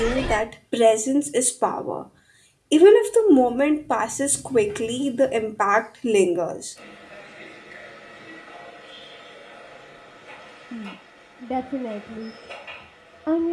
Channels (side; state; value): both; identical; correlation 1.00